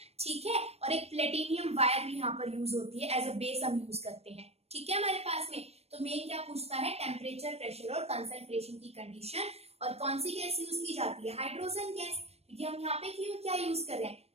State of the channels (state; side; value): late; left; 0.30 ms